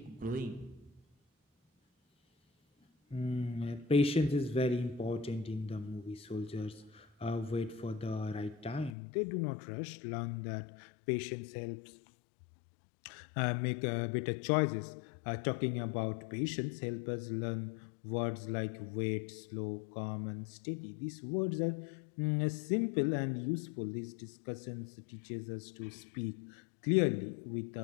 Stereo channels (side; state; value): right; drops out; at 8.9 s